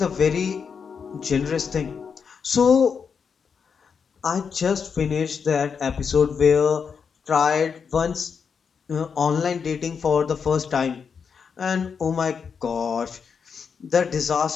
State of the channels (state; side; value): quieter; right; 6.2 dB